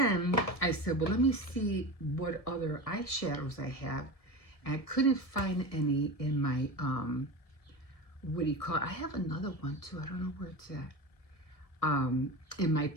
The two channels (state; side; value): late; right; 1.7 ms